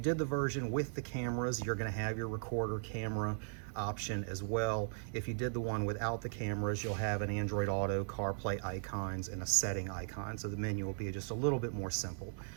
the version with the cameras, you're going to have your recorder camera option as well. If you did the one without the cameras, you'll have an Android Auto, CarPlay icons, and a setting icon. So the menu will be just a little bit more simple.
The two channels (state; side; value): silent; left; digital silence